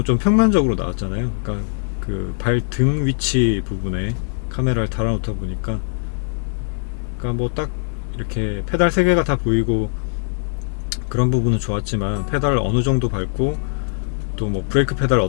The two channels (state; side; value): silent; right; 65 dB below the other